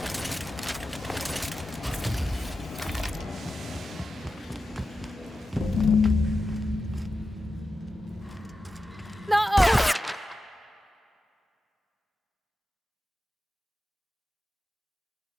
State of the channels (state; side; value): normal; both; correlation 0.91